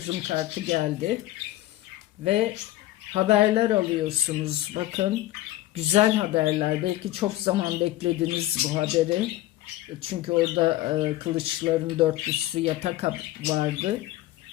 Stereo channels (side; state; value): right; quieter; 15.7 dB